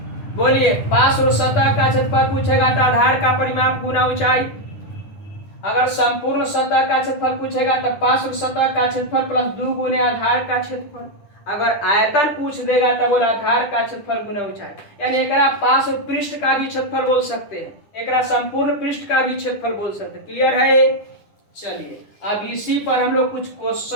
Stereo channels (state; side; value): late; right; 10 ms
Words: बोलिए पार्श्व सतह का क्षेत्रफल पूछेगा तो आधार का परिमाप गुना ऊंचाई, अगर संपूर्ण सतह का क्षेत्रफल पूछेगा तो पार्श्व सतह का क्षेत्रफल प्लस 2 गुने आधार का क्षेत्रफल, अगर आयतन पूछ देगा तो बोला आधार का क्षेत्रफल गुना ऊंचाई, यानी एकरा पार्श्व पृष्ठ का भी क्षेत्रफल बोल सकते हैं, एकरा संपूर्ण पृष्ठ का भी क्षेत्रफल बोल सकते हैं। क्लियर है? चलिए अब इसी पर हम लोग कुछ